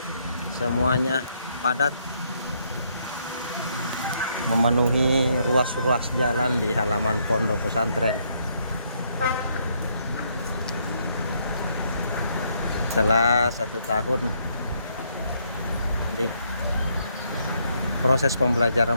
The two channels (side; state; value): both; inverted; correlation -0.72